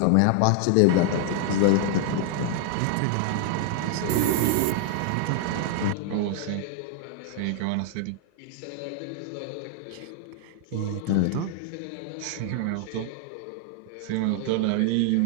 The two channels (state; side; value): different; both; correlation 0.00